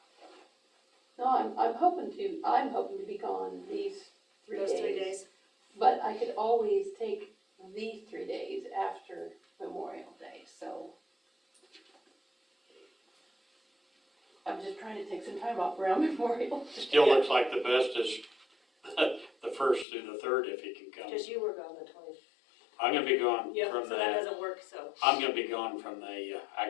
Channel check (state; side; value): drops out; right; at 19.9 s